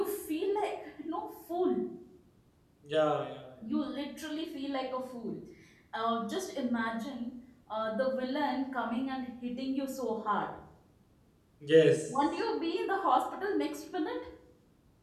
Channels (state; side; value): identical; both; correlation 1.00